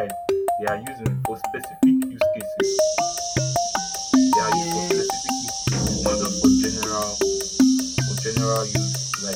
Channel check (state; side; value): identical; both; correlation 1.00